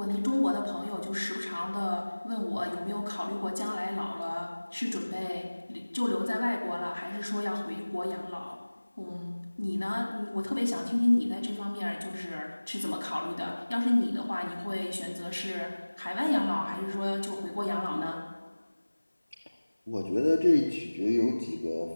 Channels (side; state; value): both; inverted; correlation -1.00